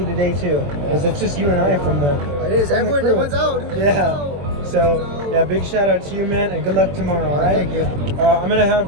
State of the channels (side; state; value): left; late; 21 ms